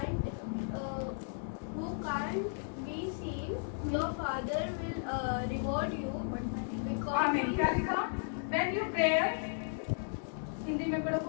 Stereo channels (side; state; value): right; silent; digital silence